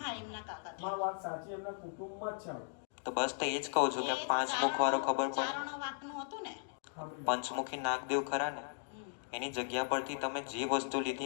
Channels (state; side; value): silent; right; digital silence